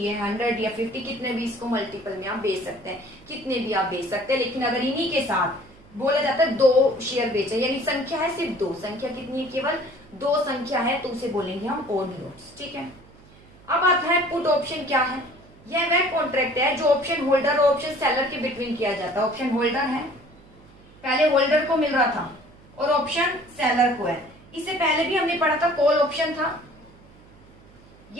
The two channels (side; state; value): right; noise; hum, 25 dB below the sound